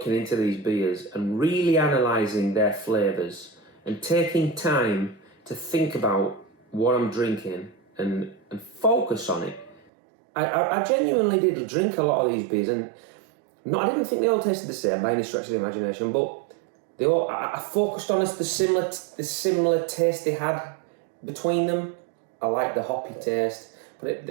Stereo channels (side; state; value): left; drops out; at 9.9 s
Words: into these beers and really analysing their flavours and taking time to think about what I'm drinking and focus on it, I genuinely did drink a lot of these beers, and I didn't think they all tasted the same by any stretch of the imagination, but I focused on the similar taste they had between them. I liked the hoppy taste.